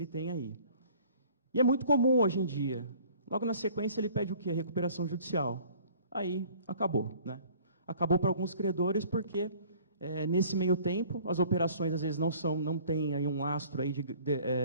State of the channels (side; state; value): both; inverted; correlation -0.52